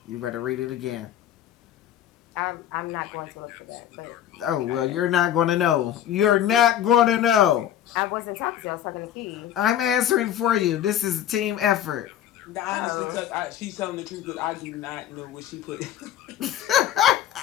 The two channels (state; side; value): quieter; right; 10.9 dB